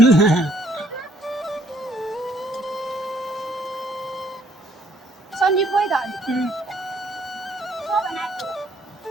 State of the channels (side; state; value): both; normal; correlation 0.65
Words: सन्दीप खोइ त